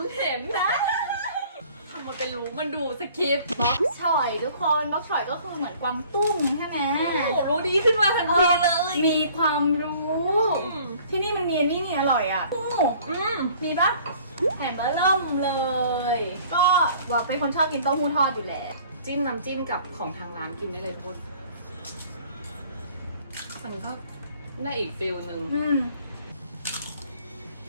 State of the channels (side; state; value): both; inverted; correlation -0.53